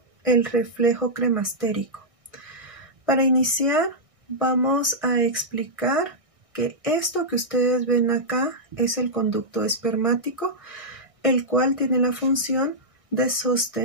el reflejo cremastérico. Para iniciar, vamos a explicar que esto que ustedes ven acá es el conducto espermático, el cual tiene la función de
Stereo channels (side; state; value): left; late; 1.6 ms